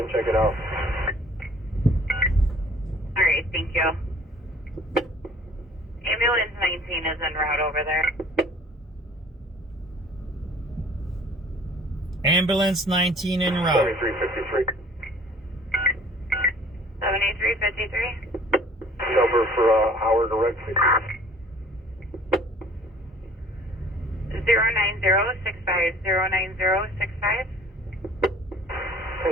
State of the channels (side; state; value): both; normal; correlation 0.52